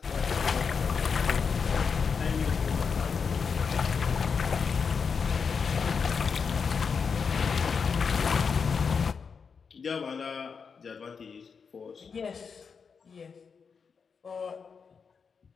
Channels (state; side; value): quieter; right; 5.8 dB